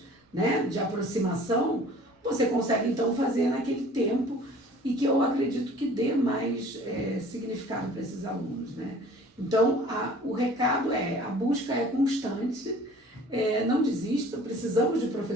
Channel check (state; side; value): normal; both; correlation 0.49